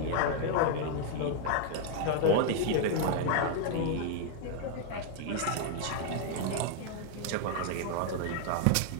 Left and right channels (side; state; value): both; different; correlation 0.00